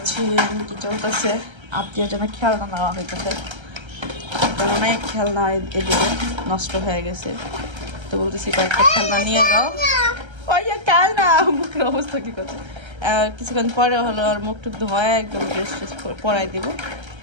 কি চলতেছে, আত্মীয় জন্য খেলনা নেওয়া হইতেছে, কারণ অনেক খেলনা এদিকে নষ্ট হয়ে গেছে। তো বলতেছি কয়েকটা খেলনা নিয়ে যাও। ওই খেলনা মুখের অবস্থা কি করছে, কিছুক্ষণ পরে হলো আর মুখ টুক ধোয়া একদম ড্রেস ট্রেস পরাই দিব।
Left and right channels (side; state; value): left; late; 1.3 ms